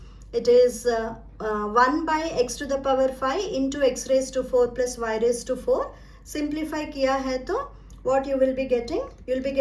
It is 1 by x to the power 5 into x raised to 4 plus y raised to 4. Simplify किया है तो what you will be getting? You will be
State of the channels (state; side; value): identical; both; correlation 1.00